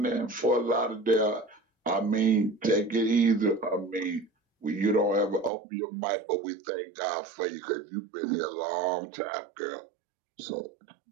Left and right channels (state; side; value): drops out; left; at 5.5 s